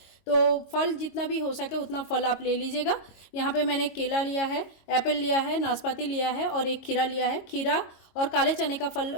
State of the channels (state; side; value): late; right; 22 ms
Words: तो फल जितना भी हो सके उतना फल आप ले लीजिएगा। यहाँ पे मैंने केला लिया है, एप्पल लिया है, नाशपाती लिया है और एक खीरा लिया है। खीरा और काले चने का फल